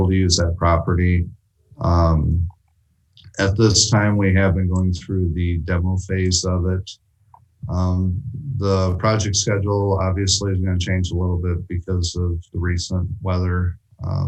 to use that property. At this time, we have been going through the demo phase of it. The project schedule obviously is going to change a little bit because of the recent weather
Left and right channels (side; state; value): both; identical; correlation 1.00